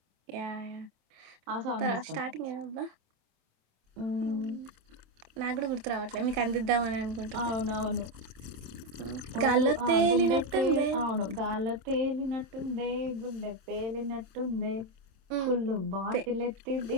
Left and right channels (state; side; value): late; left; 27 ms